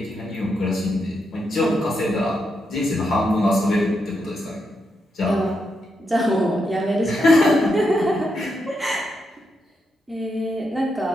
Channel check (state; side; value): normal; both; correlation 0.83